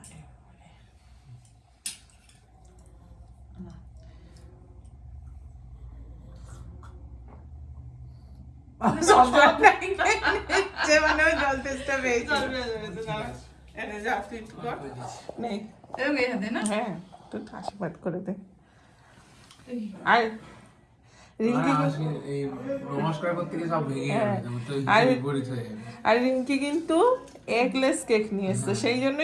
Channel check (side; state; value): both; identical; correlation 1.00